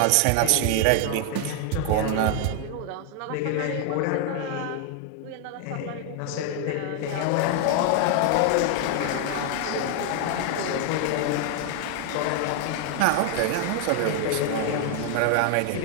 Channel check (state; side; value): different; both; correlation 0.00